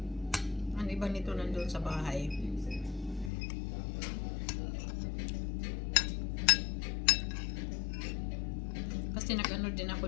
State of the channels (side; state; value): right; drops out; at 3.3 s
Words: Ang iba nito nandun sa bahay. Kasi nag-ano din ako